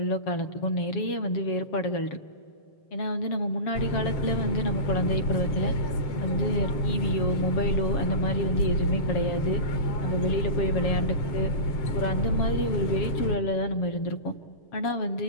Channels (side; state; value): right; late; 7.2 ms